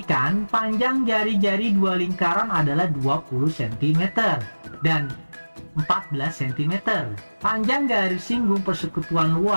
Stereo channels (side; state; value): both; inverted; correlation -1.00